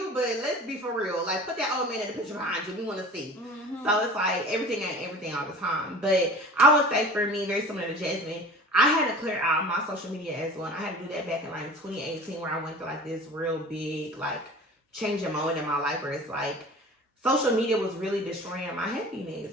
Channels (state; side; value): normal; both; correlation 0.41